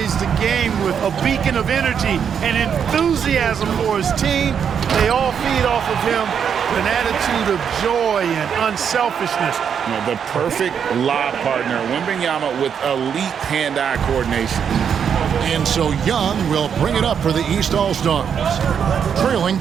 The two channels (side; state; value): left; quieter; 7.6 dB